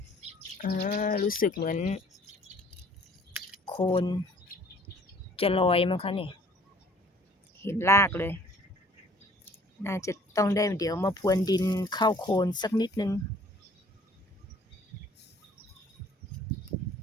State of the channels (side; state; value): both; normal; correlation 0.54